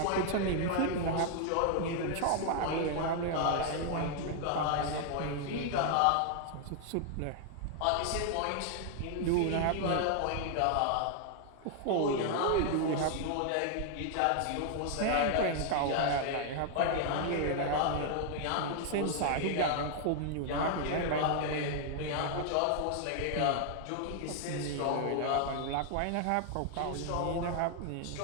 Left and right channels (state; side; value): different; both; correlation 0.00